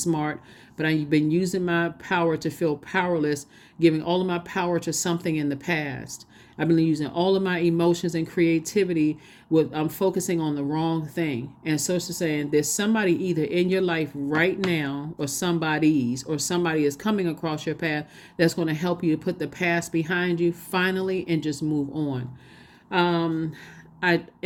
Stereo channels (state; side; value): identical; both; correlation 1.00